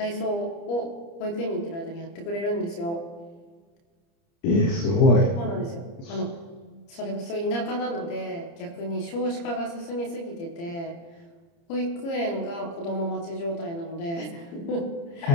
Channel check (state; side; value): late; right; 30 ms